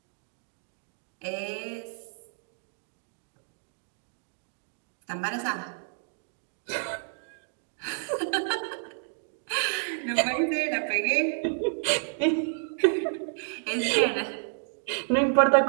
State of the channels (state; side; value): silent; left; digital silence